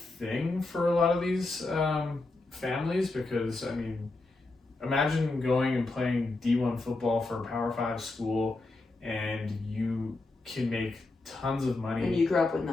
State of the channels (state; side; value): quieter; right; 3.2 dB